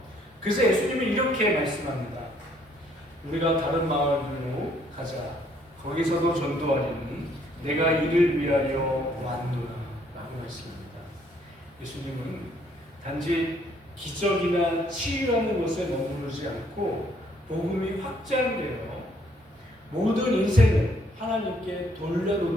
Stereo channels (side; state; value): both; normal; correlation 0.66